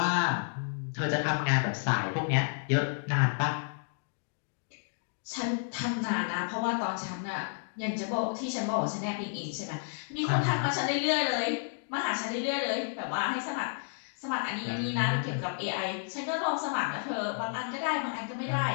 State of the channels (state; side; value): silent; right; digital silence